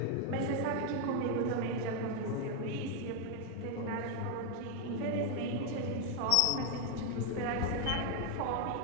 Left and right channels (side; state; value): both; different; correlation 0.01